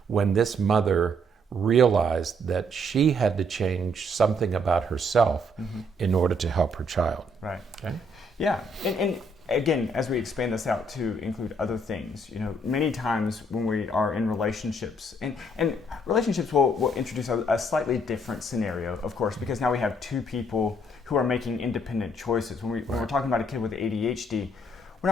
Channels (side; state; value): both; normal; correlation 0.68